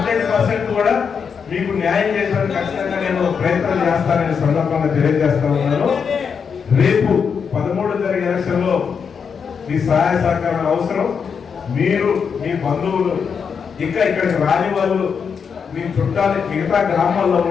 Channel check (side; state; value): right; quieter; 6.4 dB